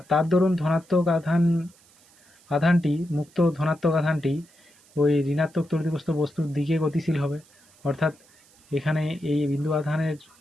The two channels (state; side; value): noise; right; hiss, 29 dB below the sound